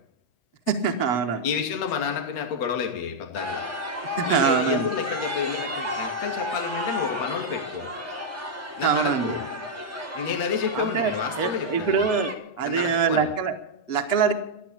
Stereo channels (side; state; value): right; late; 8.0 ms